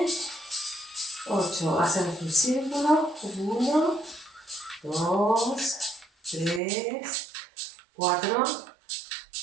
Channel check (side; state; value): left; drops out; at 6.6 s